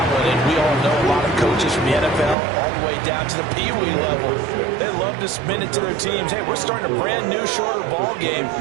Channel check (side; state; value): left; drops out; at 2.4 s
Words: one. And we all know a lot of coaches from the NFL all the way down to the Pee-wee level. They love to spin it to their teams. Hey, we're starting a brand new, shorter ball game.